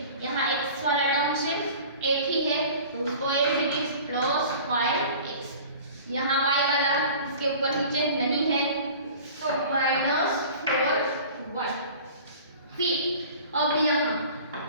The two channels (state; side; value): inverted; both; correlation -0.43